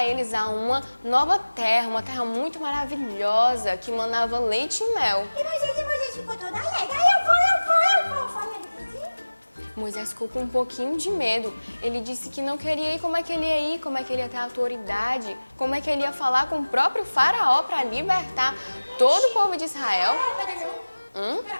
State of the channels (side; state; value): both; inverted; correlation -1.00